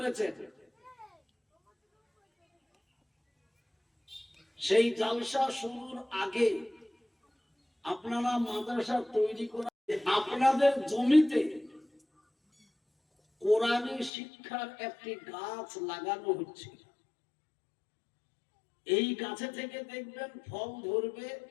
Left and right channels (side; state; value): right; drops out; at 14.1 s